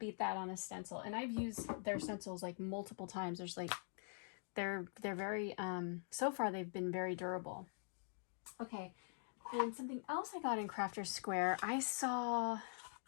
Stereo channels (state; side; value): silent; right; digital silence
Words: beat that on a stencil. And I've used their stencils like multiple times. There's like, they're very, so far they've been very durable. Okay, and something else I got in Crafter's Square, I